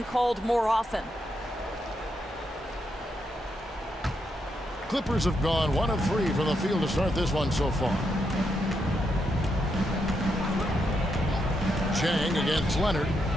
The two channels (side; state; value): both; normal; correlation 0.81